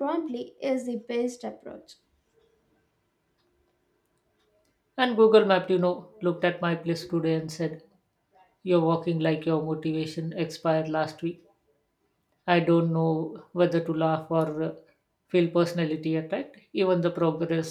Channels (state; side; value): identical; both; correlation 1.00